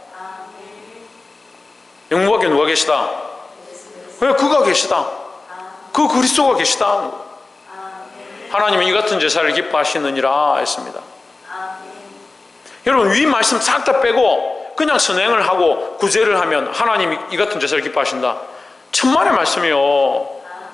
영문 밖에 누가 계시다? 왜? 그가 계시다. 그 그리스도가 계시다. 하나님은 이 같은 제사를 기뻐하시느니라 했습니다. 여러분, 위 말씀 싹 다 빼고 그냥 선행을 하고 구제를 하면 하나님이 이 같은 제사를 기뻐하신다. 천만의 말씀이요.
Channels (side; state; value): right; quieter; 3.5 dB